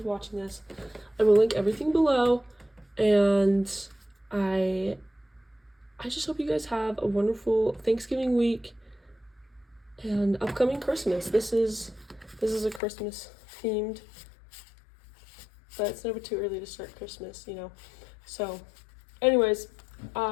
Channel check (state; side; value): drops out; right; at 12.8 s